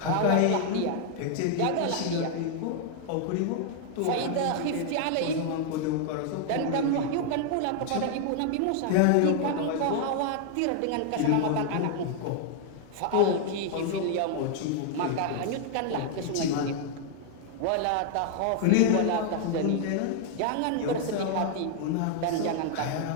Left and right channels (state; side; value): different; both; correlation 0.00